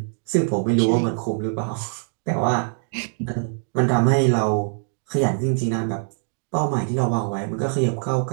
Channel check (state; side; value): silent; left; 57 dB below the other